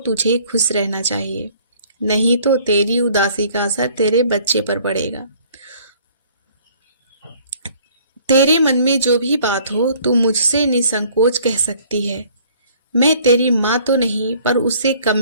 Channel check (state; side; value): inverted; both; correlation -0.56